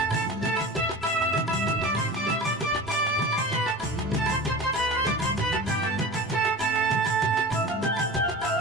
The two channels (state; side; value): normal; both; correlation 0.34